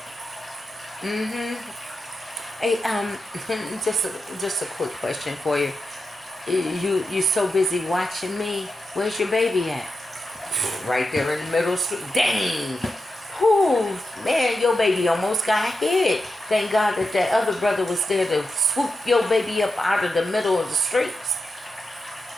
hey, just a quick question for you. You so busy watching me. Where's your baby at? Right there in the middle of the street. Dang. Whew, man, your baby almost got hit. Thank God that other brother was there to swoop your baby up out of the middle of the streets.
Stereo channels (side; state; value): both; normal; correlation 0.89